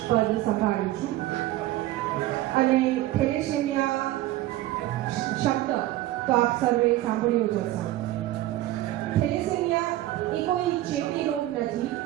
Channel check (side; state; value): left; quieter; 15.7 dB